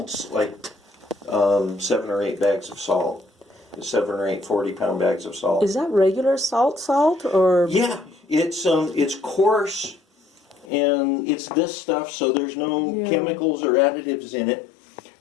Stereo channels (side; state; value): right; drops out; at 10.7 s